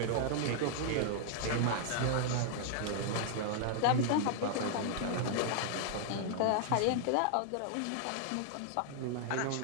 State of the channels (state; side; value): different; both; correlation -0.01